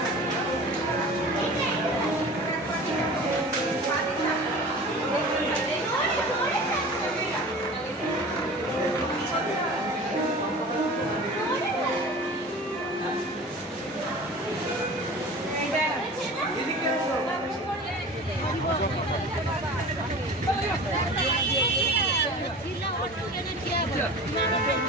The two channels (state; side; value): normal; both; correlation 0.38